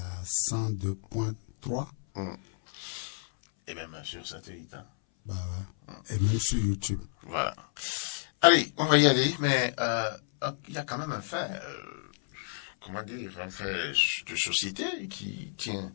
102.3. Et même sur satellite. Bah ouais. Et même sur YouTube. Voilà. Allez, on va y aller, mais il y a quand même un fait, un fait de société qui tient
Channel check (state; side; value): silent; right; 57 dB below the other